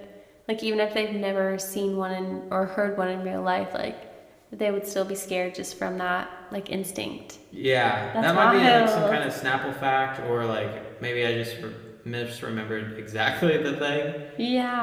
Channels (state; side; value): identical; both; correlation 1.00